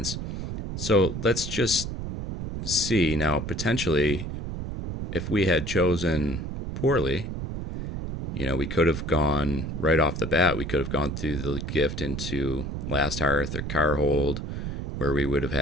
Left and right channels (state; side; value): noise; right; rumble, 5 dB below the sound